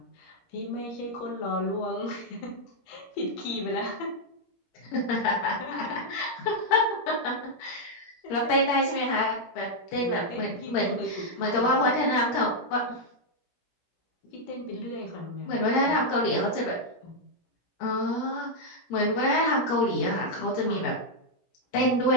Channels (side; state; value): right; late; 17 ms